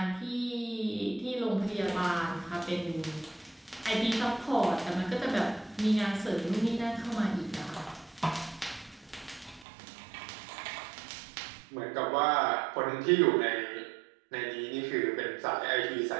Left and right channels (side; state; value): left; drops out; at 9.7 s